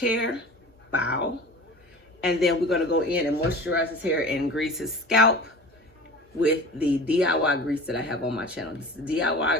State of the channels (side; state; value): both; normal; correlation 0.37